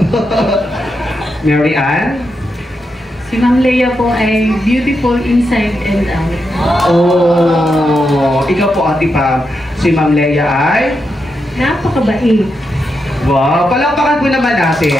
Mary Ann? Si Ma'am Leia po ay beautiful inside and out. Oh! Ikaw po, Ate Pam. Si Ma'am Leia ay? Napakabait. Wow! Palakpakan po naman natin.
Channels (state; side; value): normal; both; correlation 0.85